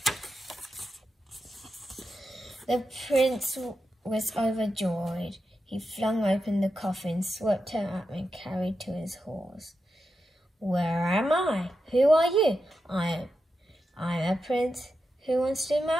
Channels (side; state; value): both; normal; correlation 0.88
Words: The prince was overjoyed. He flung open the coffin, swept her up and carried to his horse. "Where am I? Who are you?" I'm a prince who wants to